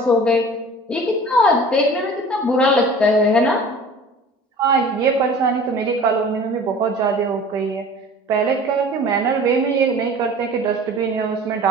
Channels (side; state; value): both; normal; correlation 0.43